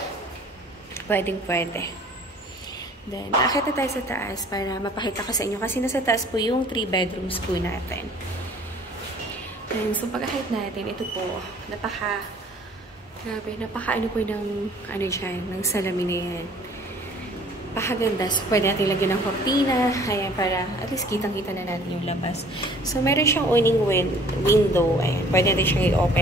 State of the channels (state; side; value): normal; both; correlation 0.53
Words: Pwede. Then, akit na tayo sa taas para mapakita ko sa inyo. Kasi nasa taas po yung 3 bedrooms po natin. And so, pag-akit natin, ito po, grabe, ano po ng, ng salamin na yan. Pakaganda. So, pwede natin lagyan ng cortina. Ayan, para at least kitang-kita na natin yung labas. So, meron siyang awning window. Ayan, pwede natin siyang